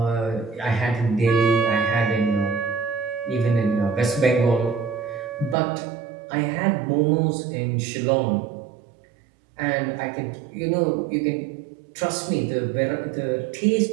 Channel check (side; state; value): left; drops out; at 5.6 s